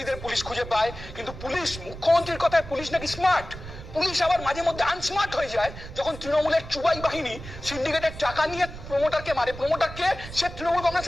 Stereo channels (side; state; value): right; noise; rumble, 12 dB below the sound